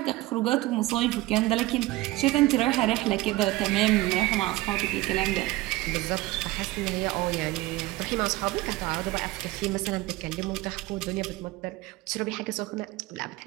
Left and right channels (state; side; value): quieter; left; 18.9 dB